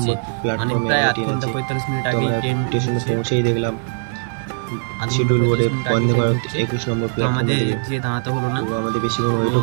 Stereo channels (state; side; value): silent; left; 61 dB below the other